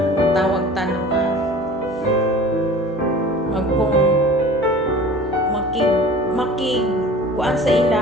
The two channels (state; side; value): normal; both; correlation 0.42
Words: tawag tanong kung makig kuan sa